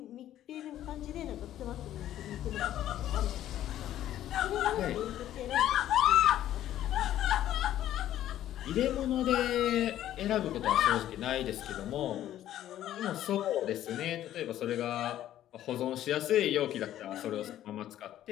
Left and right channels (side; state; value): right; quieter; 12.4 dB